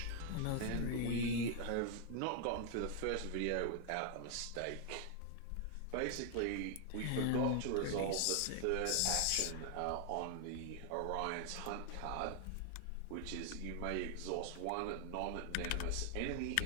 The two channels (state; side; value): different; both; correlation 0.00